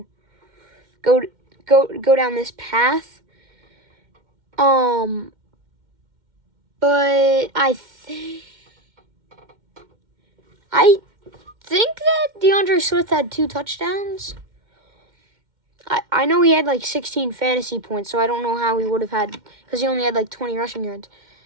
go down this path. But I think that DeAndre Swift had 2 touchdowns. I know he had like 16 fantasy points, so I don't know how he would have had, because he only had like 20 rushing yards.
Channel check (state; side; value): late; left; 2.1 ms